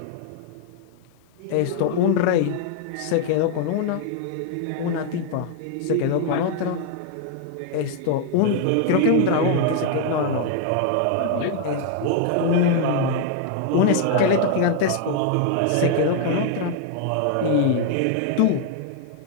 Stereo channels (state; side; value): different; both; correlation 0.00